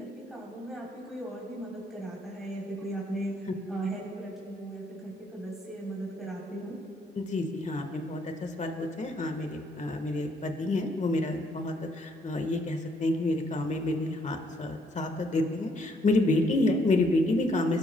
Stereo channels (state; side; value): normal; both; correlation 0.69